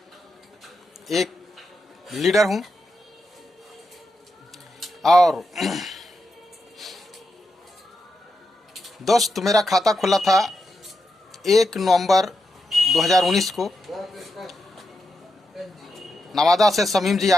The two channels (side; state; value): both; normal; correlation 0.86